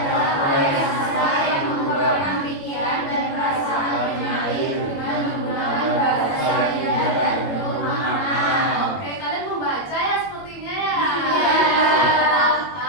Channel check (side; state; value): right; late; 21 ms